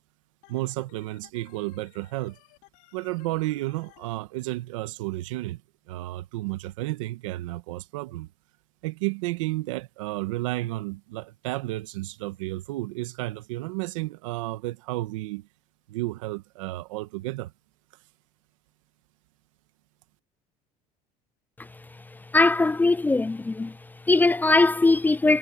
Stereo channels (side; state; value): both; normal; correlation 0.57